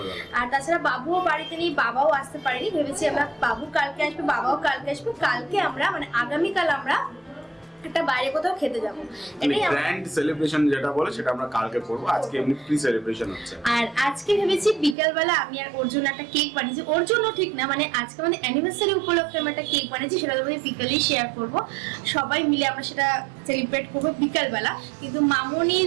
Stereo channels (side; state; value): left; drops out; at 15.0 s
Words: আর তাছাড়া বাবুও বাড়িতে নেই, বাবাও আসতে পারেনি। ভেবেছি আমরা বাবু কালকে আসবে, বাবাও কালকে আসবে। কালকে আমরা মানে আগামীকাল আমরা একটা বাইরে কোথাও খেতে যাবো। এটাই গ্র্যান্ড সেলিব্রেশন যেটা বলে সেটা আমরা কালকে করব। আজকে এমনি প্রি সেলিব্রেশন হচ্ছে। আর আজকে ভেবেছি বিকালবেলা আমি আর ওর জন্য একটা কেক বানিয়েছি। ওর জন্য ঠিক না, মানে আজকে আমাদের অ্যানিভার্সারি উপলক্ষে আমি একটা কেক বানিয়েছি, সেটা তোমাদের বিকালেই শেয়ার করব। সবাই মিলে আমরা সেটা সেলিব্রেট করবো বিকালবেলা। কিন্তু